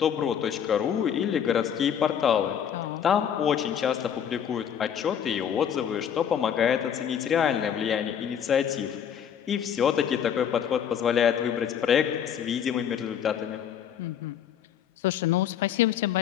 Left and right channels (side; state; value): right; quieter; 8.7 dB